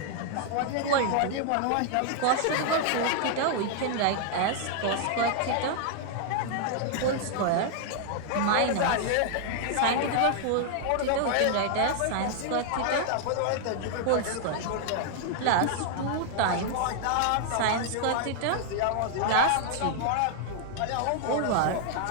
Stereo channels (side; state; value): both; different; correlation 0.00